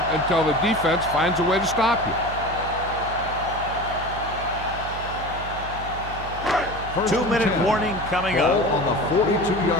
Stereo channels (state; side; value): noise; right; hum, 10 dB below the sound